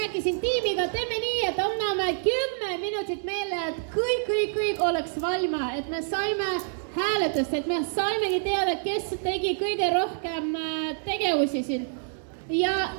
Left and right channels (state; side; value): silent; left; digital silence